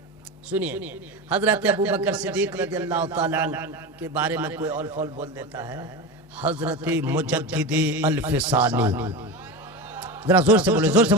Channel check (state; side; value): normal; both; correlation 0.24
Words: सुनिए, हजरत अबू बकर सिद्दीक रज़ियल्लाहु ताला के बारे में कोई और फौल बोल देता है, हजरत मुजद्दिद अल-फिसानी, जरा जोर से बोले, जोर से